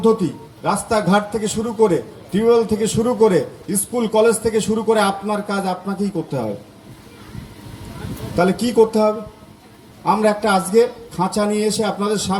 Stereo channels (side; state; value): both; identical; correlation 1.00